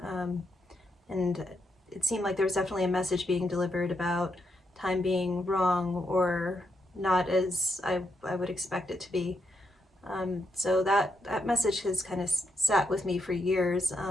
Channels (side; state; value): both; normal; correlation 0.80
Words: and it seemed like there was definitely a message being delivered about time being wrong or not as I would expect it to be. So that message has kind of sat with me for years,